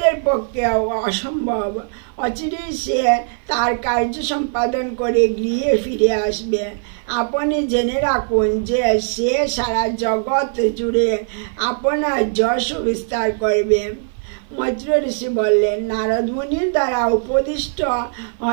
পক্ষে অসম্ভব। অচিরেই সে তার কার্য সম্পাদন করে গৃহে ফিরে আসবে। আপনি জেনে রাখুন যে সে সারা জগৎ জুড়ে আপনার যশ বিস্তার করবে। মৈত্র ঋষি বললেন, নারদ মুনির দ্বারা উপদিষ্ট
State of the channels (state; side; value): silent; left; 57 dB below the other